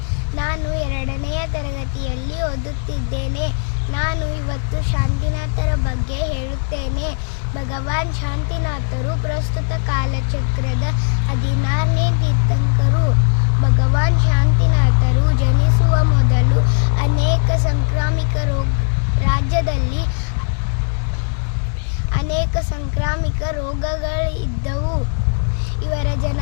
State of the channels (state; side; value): silent; right; digital silence